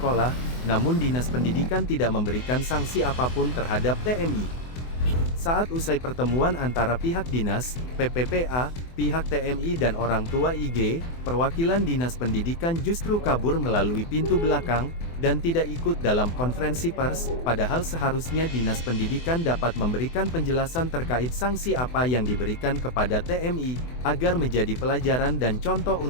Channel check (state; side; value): late; right; 24 ms